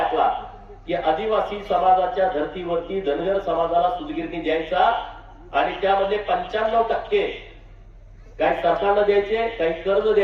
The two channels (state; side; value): identical; both; correlation 1.00